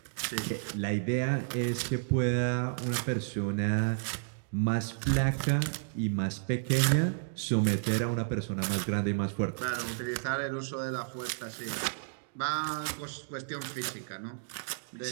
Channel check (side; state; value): left; silent; digital silence